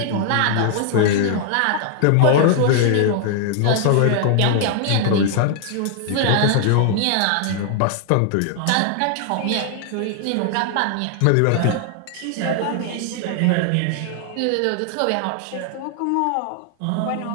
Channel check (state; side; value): different; both; correlation 0.00